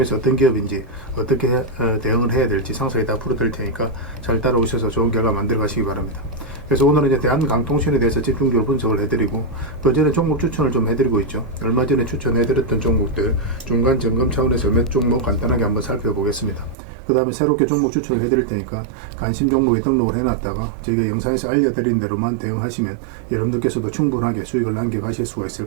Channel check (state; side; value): drops out; left; at 16.8 s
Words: 어떤 기업인지 어떻게 대응을 해야 될지 상세히 다 풀어드릴 테니까 잘 따라오셔서 좋은 결과 만들어 가시기 바랍니다. 그래서 오늘은 이제 대한강통신에 대해서 집중적으로 분석을 해드리고 그전에 종목 추천을 좀 해드리고 있죠. 얼마 전에 추천해드렸던 종목들 중간 점검 차원에서 몇 종목 간단하게 한번 살펴보겠습니다. 그 다음에 새롭게 종목 추천을 해드릴 테니까 관심 종목에 등록을 해놨다가 저희가 영상에서 알려드린 대로만 대응하시면 여러분들께서도 충분하게 수익을 남겨가실 수가